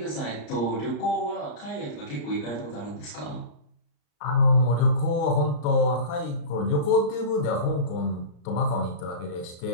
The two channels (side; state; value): right; late; 34 ms